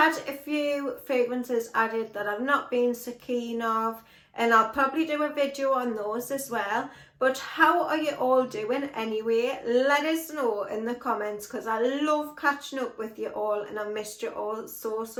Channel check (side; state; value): both; identical; correlation 1.00